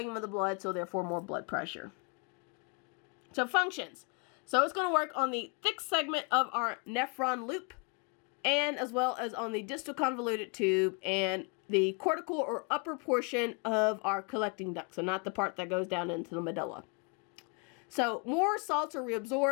of the blood, so therefore more blood pressure. So functions. So it's going to work on the thick segment of our nephron loop, and as well as on the distal convoluted tube and the cortical or upper portion of our collecting duct, so not the part that goes down into the medulla. So more salts are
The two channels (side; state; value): right; quieter; 34.3 dB